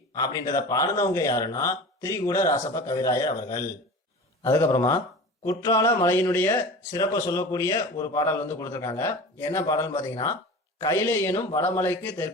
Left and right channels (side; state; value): both; normal; correlation 0.35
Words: அப்படின்றத பாடினவங்க யாருன்னா திரிகூட ராசப்ப கவிராயர் அவர்கள். அதுக்கப்புறமா குற்றால மலையினுடைய சிறப்பை சொல்லக்கூடிய ஒரு பாடல் வந்து கொடுத்துருக்காங்க. என்ன பாடல்னு பாத்தீங்கன்னா கைலை எனும் வடமலைக்கு